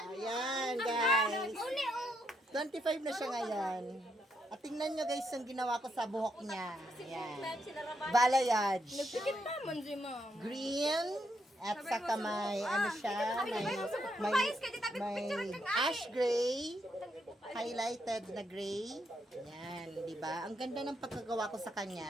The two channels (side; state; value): both; normal; correlation 0.77